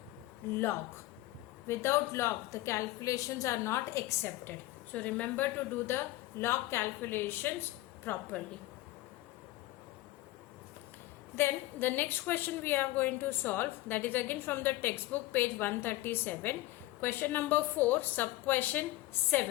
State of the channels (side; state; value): right; quieter; 18.0 dB